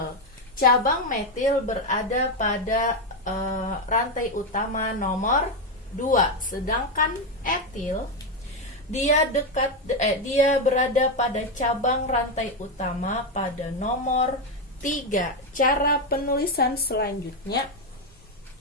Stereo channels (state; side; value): normal; both; correlation 0.07